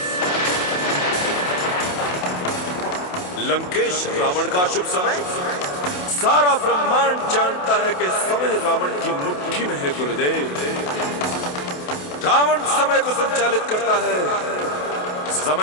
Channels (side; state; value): right; late; 28 ms